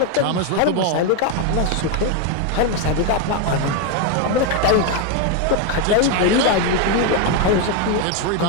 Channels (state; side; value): different; both; correlation 0.02